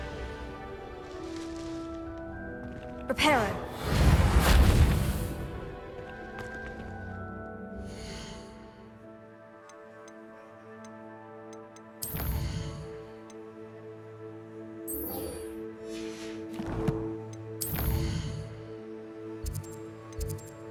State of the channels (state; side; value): identical; both; correlation 1.00